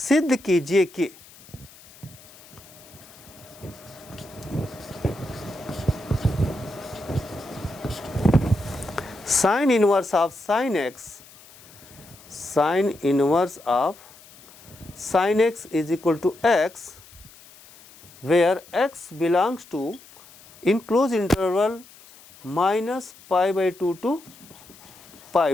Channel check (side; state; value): left; noise; hiss, 23 dB below the sound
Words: कीजिए कि sine inverse of sine x, sine inverse of sine x is equal to x, where x belongs to in close interval -π/2 to